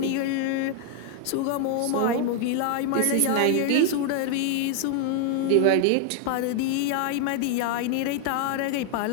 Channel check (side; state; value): both; different; correlation 0.00